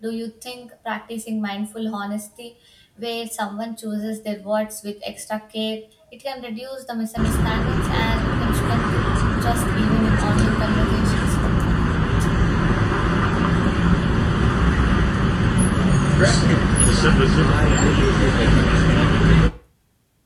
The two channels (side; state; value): both; identical; correlation 1.00